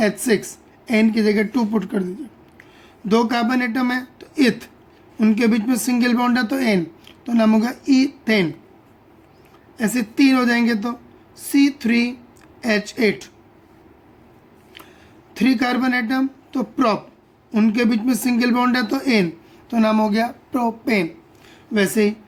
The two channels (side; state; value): both; identical; correlation 1.00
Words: एन की जगह 2 पुट कर दीजिए। 2 कार्बन एटम है तो इथ, उनके बीच में सिंगल बॉन्ड है तो एन, तो नाम होगा ईथेन। ऐसे 3 हो जाएंगे तो C3H8। 3 कार्बन एटम तो प्रॉप, उनके बीच में सिंगल बॉन्ड है तो एन, तो नाम हो गया प्रोपेन। वैसे ही